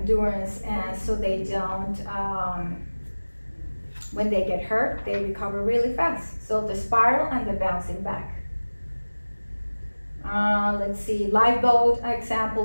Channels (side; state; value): both; inverted; correlation -1.00